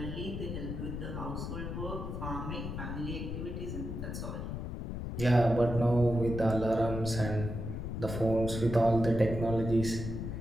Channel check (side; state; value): left; noise; rumble, 5 dB below the sound